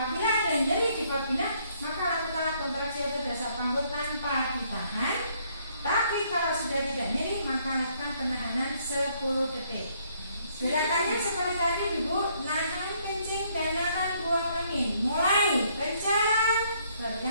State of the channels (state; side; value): inverted; both; correlation -0.68